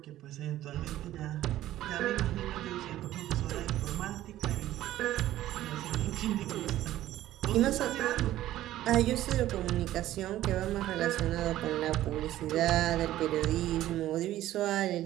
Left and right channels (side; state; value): left; quieter; 14.0 dB